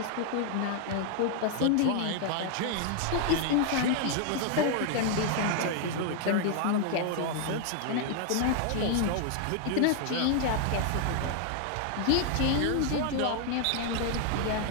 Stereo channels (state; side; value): different; both; correlation 0.00